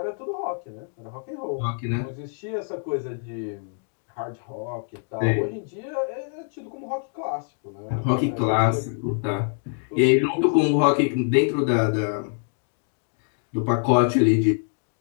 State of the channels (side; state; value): right; silent; 60 dB below the other